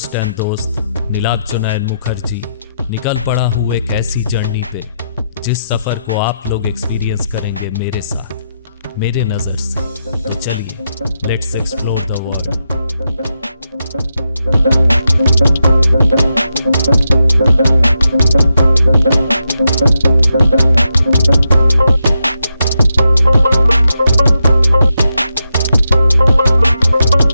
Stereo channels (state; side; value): inverted; both; correlation -0.85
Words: एंड दोस्त नीलाब्जोनयन मुखर्जी निकल पड़ा हूँ एक ऐसी जर्नी पे जिस सफ़र को आप लोग एक्सपीरियंस करेंगे मेरे साथ, मेरे नज़र से। तो चलिए, लेट्स एक्सप्लोर द वर्ल्ड।